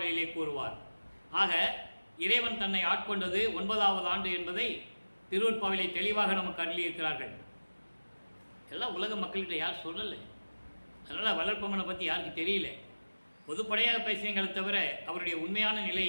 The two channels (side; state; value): both; inverted; correlation -1.00